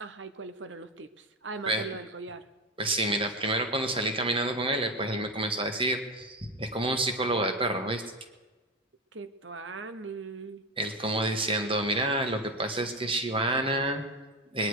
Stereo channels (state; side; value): normal; both; correlation 0.16